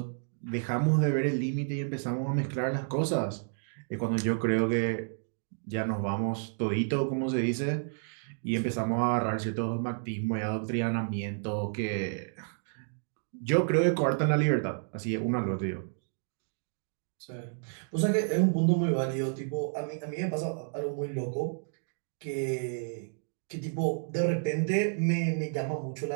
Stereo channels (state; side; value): silent; left; digital silence